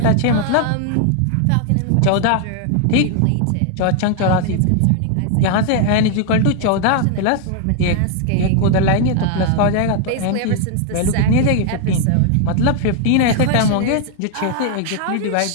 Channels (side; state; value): both; different; correlation 0.00